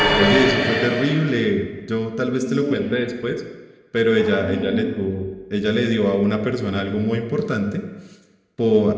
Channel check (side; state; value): both; identical; correlation 1.00